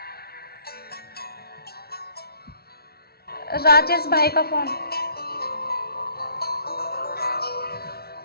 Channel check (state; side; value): late; right; 0.45 ms